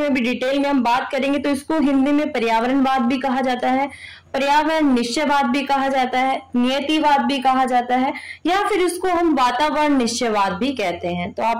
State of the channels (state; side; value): identical; both; correlation 1.00